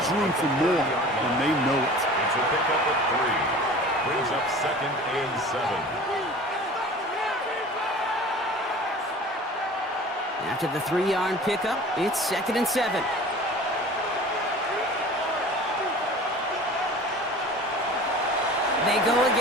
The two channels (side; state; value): both; normal; correlation 0.41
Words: room for more, and they know it. It's a pickup of 3. Brings up 2nd and 7. After the 3-yard pickup, it's 2nd and 7. They go